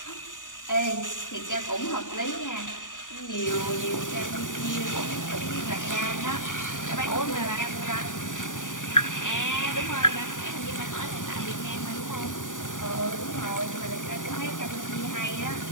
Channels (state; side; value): late; right; 0.88 ms